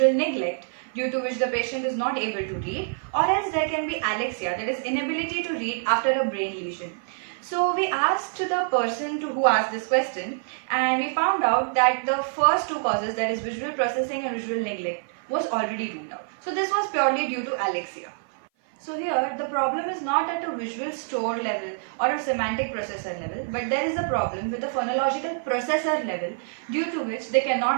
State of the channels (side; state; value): left; silent; 57 dB below the other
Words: neglect due to which the patient is not able to read, or else there can be alexia, that is inability to read after a brain lesion. So we asked the person who asked this question, and we found out that the first two causes, that is visual processing and visual neglect, was already ruled out. So this was purely due to alexia. So here the problem is not at a visual store level or a semantic processor level, but there is a problem with the phonological processor level due to which they